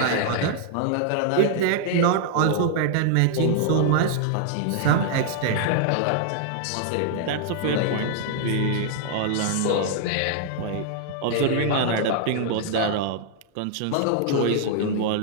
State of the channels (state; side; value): different; both; correlation -0.01